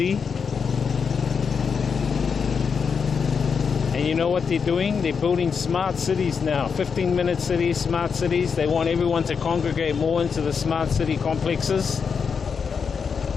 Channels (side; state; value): right; quieter; 6.1 dB